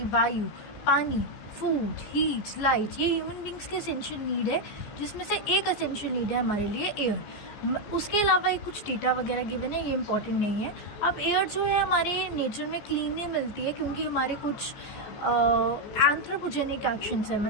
वायु, पानी, फूड, हीट, लाइट, ये ह्यूमन बींग्स के एसेंशियल नीड है, जिसमें से एक एसेंशियल नीड है हमारे लिए एयर। उसके अलावा एक कुछ डेटा वगैरह गिवन है, ये इंपॉर्टेंट नहीं है। अब एयर जो है हमारे नेचर में क्लीन नहीं मिलती है क्योंकि हमारे कुछ एंथ्रोपोजेनिक एक्शंस है,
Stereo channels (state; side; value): late; right; 14 ms